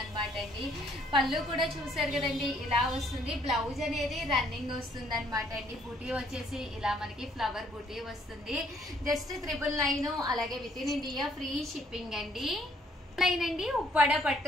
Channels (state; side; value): normal; both; correlation 0.65